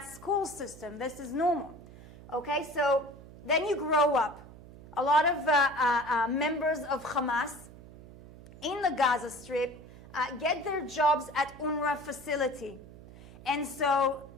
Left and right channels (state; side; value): noise; right; hum, 19 dB below the sound